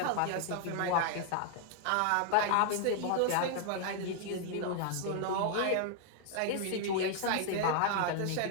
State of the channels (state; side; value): different; both; correlation 0.00